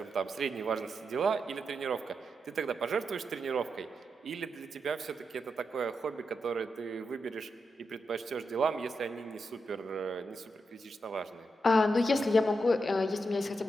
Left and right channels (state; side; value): normal; both; correlation 0.85